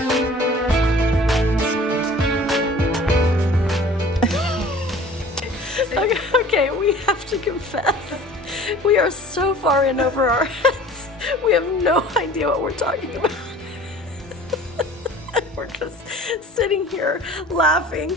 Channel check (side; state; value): both; normal; correlation 0.46